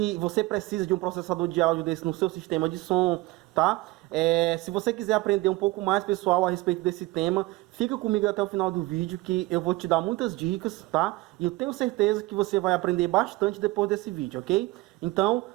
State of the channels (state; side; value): quieter; left; 20.7 dB